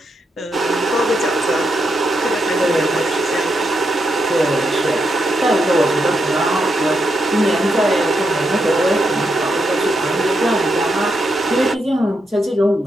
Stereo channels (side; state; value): both; normal; correlation 0.82